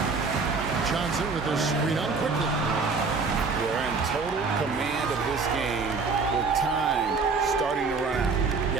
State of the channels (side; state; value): left; quieter; 4.5 dB